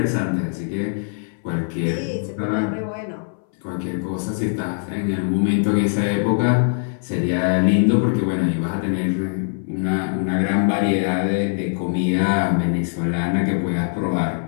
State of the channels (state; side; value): silent; right; 61 dB below the other